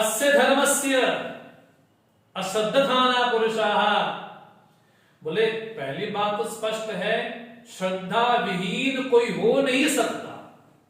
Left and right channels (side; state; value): both; identical; correlation 1.00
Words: धर्मस्य अश्रद्धाना पुरुषाः, बोले पहली बात तो स्पष्ट है, श्रद्धा विहीन कोई हो नहीं सकता,